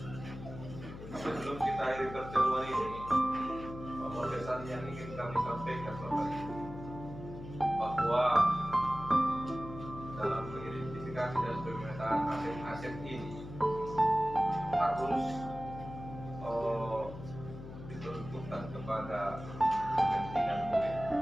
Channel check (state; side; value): noise; left; hum, 12 dB below the sound